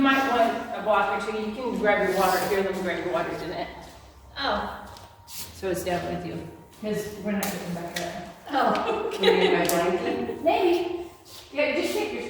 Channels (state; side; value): identical; both; correlation 1.00